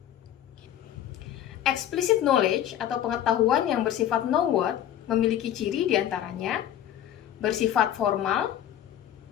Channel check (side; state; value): right; quieter; 11.1 dB